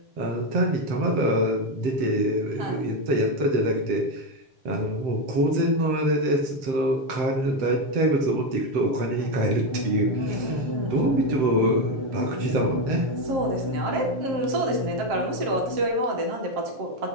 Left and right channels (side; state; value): left; late; 7.7 ms